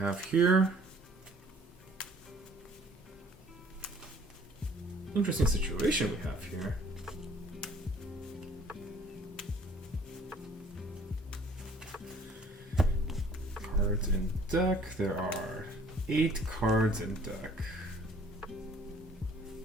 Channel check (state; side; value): normal; both; correlation 0.57